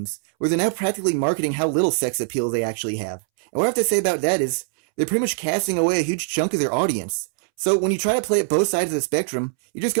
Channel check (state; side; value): silent; left; 64 dB below the other